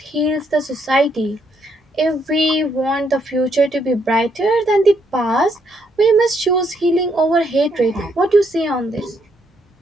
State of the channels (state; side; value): normal; both; correlation 0.74